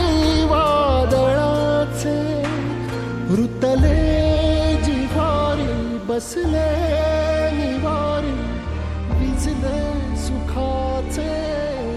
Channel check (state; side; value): identical; both; correlation 1.00